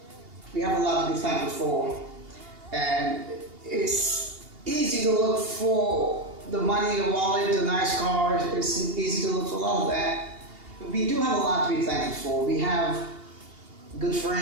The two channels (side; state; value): left; late; 2.8 ms